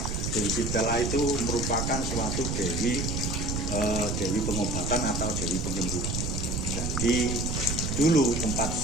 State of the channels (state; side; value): noise; right; rumble, 1 dB below the sound